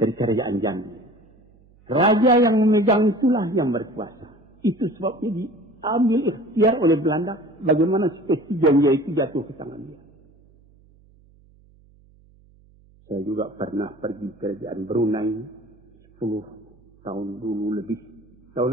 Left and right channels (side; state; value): right; noise; hum, 29 dB below the sound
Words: Jambi. Raja yang memegang itulah yang berkuasa. Itu sebabnya diambil ikhtiar oleh Belanda bagaimana spesies Janja itu jatuh ke tangan dia. Saya juga pernah pergi ke kerajaan Brunei 10 tahun dulu lebih. Tahun